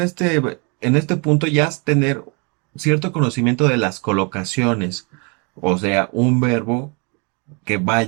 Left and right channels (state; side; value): quieter; left; 33.1 dB